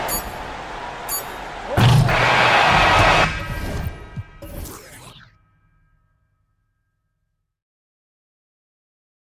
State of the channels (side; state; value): both; identical; correlation 1.00